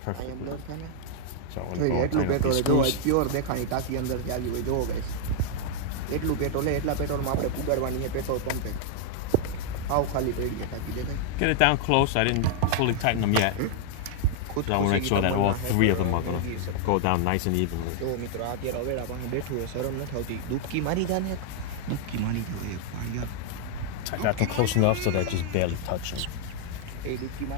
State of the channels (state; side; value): different; both; correlation 0.00